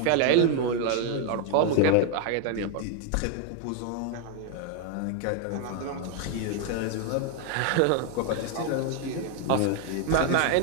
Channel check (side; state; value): both; different; correlation 0.00